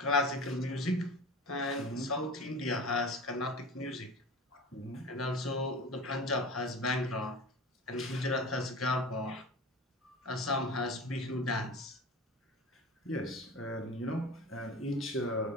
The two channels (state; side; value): normal; both; correlation 0.34